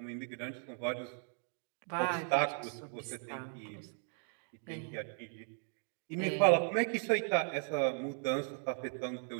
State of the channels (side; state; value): left; silent; 53 dB below the other